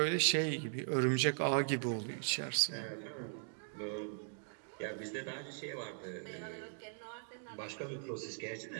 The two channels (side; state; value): left; silent; digital silence